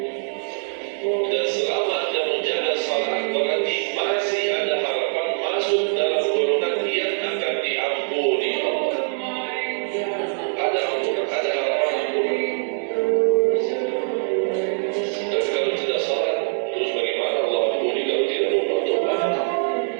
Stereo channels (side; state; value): left; silent; digital silence